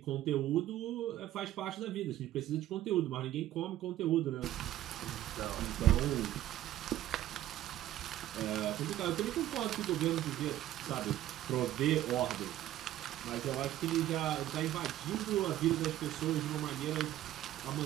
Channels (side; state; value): left; quieter; 13.7 dB